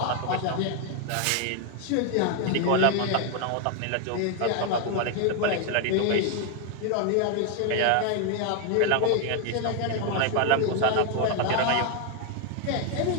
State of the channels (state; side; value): different; both; correlation 0.00